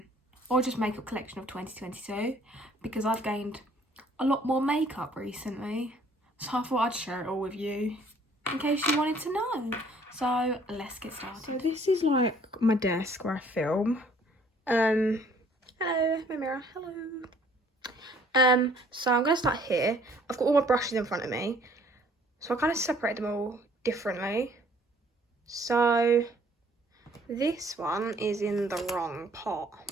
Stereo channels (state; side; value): normal; both; correlation 0.59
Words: or just makeup collection of 2022, because I've gained a lot more makeup recently, so I thought I'd share it all with you in case you wanted to know. So let's get started. So this is like my desk where I film. Hello, my mirror, hello. So I'm going to start here. I've got all my brushes in front of me. So I kind of separate them all differently. So this one is in the wrong pot.